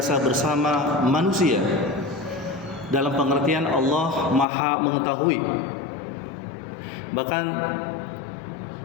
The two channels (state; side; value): drops out; right; at 4.5 s